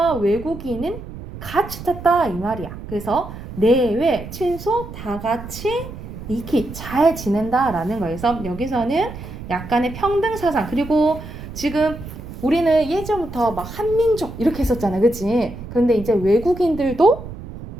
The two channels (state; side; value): noise; right; rumble, 12 dB below the sound